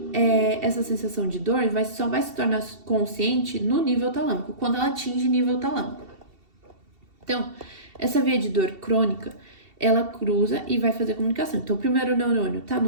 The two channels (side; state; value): left; late; 2.7 ms